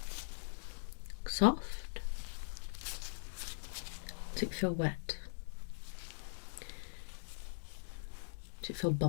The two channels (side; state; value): right; silent; digital silence